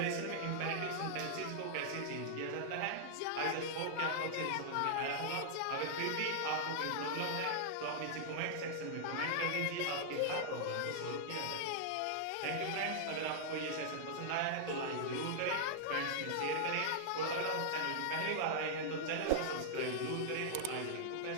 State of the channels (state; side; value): different; both; correlation -0.01